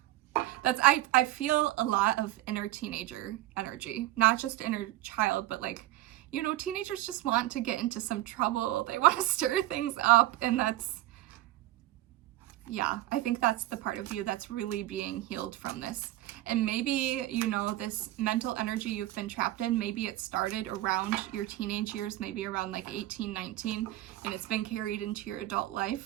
That's, I feel a lot of inner teenager energy, not just inner child, but like, you know, teenagers just want to get into some trouble. They want to stir things up. And that's, yeah, I think that's the part of you that's really being healed from this. And maybe, you know, this mental energy you've been trapped in, maybe it started around your teenage years, maybe around like 18, 19, and it's been carried into your adult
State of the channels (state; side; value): quieter; left; 15.9 dB